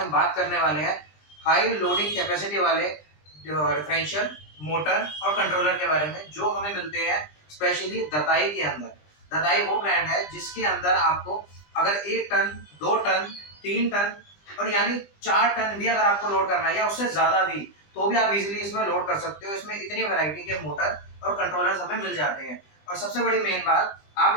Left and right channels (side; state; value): right; late; 20 ms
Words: बात करने वाले हैं हाई लोडिंग कैपेसिटी वाले डिफरेंशियल मोटर और कंट्रोलर के बारे में, जो हमें मिलते हैं स्पेशली दताई के अंदर। दताई वो ब्रांड है जिसके अंदर आपको अगर 1 टन, 2 टन, 3 टन और यानी 4 टन भी अगर आपको लोड करना है या उससे ज़्यादा भी, तो भी आप इजीली इसमें लोड कर सकते हो। इसमें इतनी वैरायटी के मोटर और कंट्रोलर्स हमें मिल जाते हैं। और सबसे बड़ी मेन बात,